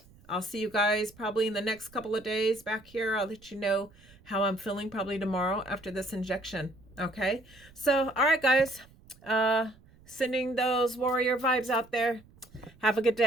I'll see you guys probably in the next couple of days back here. I'll let you know how I'm feeling probably tomorrow after this injection. Okay. So, all right, guys. Sending those warrior vibes out there. Have a good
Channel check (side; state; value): right; noise; rumble, 26 dB below the sound